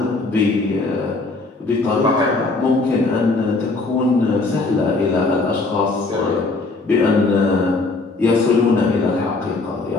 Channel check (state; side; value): quieter; right; 3.5 dB